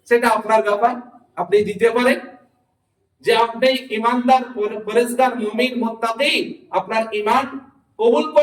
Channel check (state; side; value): identical; both; correlation 1.00